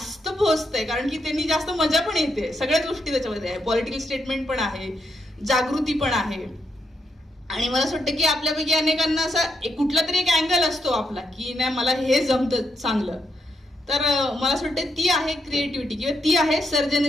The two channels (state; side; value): normal; both; correlation 0.80